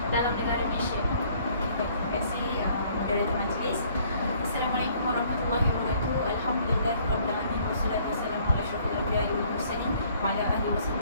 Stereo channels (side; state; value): both; inverted; correlation -0.60